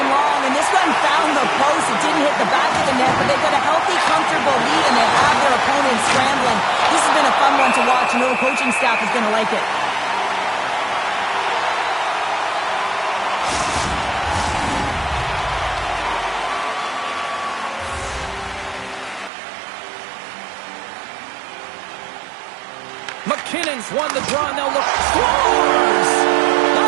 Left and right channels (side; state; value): left; drops out; at 19.3 s